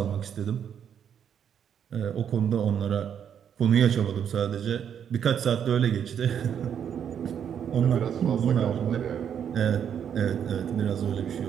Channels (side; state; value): left; quieter; 8.5 dB